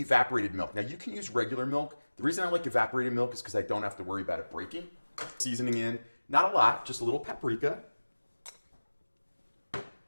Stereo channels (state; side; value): inverted; both; correlation -1.00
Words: milk. Now you can use regular milk. The reason I like evaporated milk is because I don't have to worry about it breaking. Seasoning in, not a lot, just a little paprika.